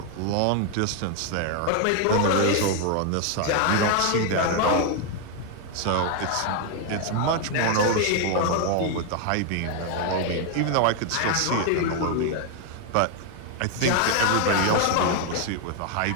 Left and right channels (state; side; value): different; both; correlation 0.01